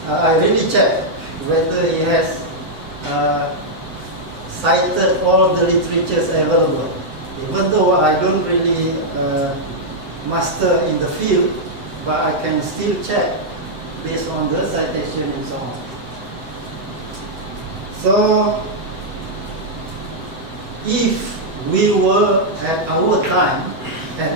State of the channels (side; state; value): left; late; 8.0 ms